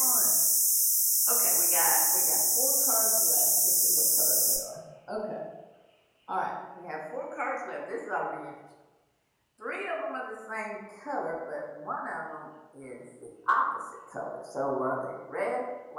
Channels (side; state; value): both; identical; correlation 1.00